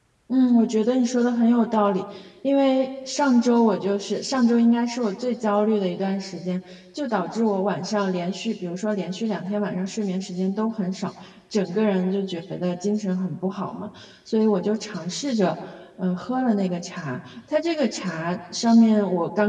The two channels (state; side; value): identical; both; correlation 1.00